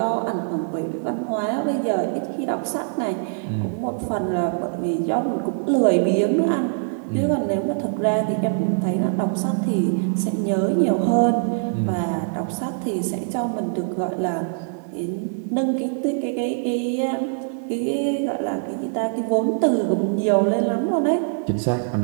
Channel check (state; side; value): silent; left; 62 dB below the other